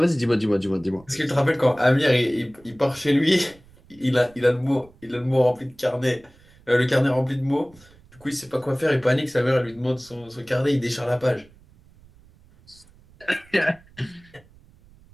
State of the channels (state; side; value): noise; right; rumble, 27 dB below the sound